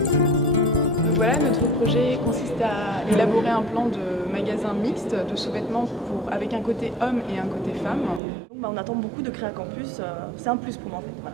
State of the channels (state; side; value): drops out; left; at 8.2 s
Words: Voilà, notre projet consiste à élaborer un plan de magasin mixte de sous-vêtements avec un côté homme et un côté femme. Donc, on attend beaucoup de Créacampus, c'est un plus pour moi en fait.